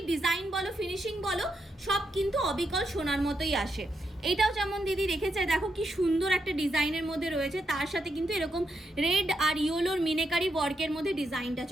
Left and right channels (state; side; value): normal; both; correlation 0.82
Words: ডিজাইন বলো ফিনিশিং বলো সব কিন্তু অবিকল সোনার মতোই আসে। এটাও যেমন দিদি রেখেছে, দেখো কি সুন্দর একটা ডিজাইনের মধ্যে রয়েছে, তার সাথে কিন্তু এরকম রেড আর ইয়েলোর মিনেকারি ওয়ার্কের মধ্যে ডিজাইনটা